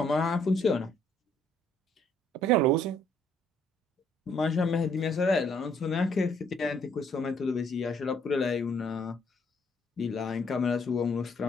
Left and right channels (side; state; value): both; normal; correlation 0.65